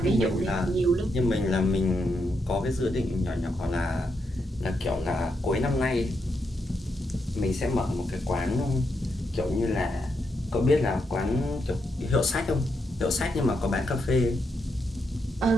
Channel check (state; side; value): normal; both; correlation 0.81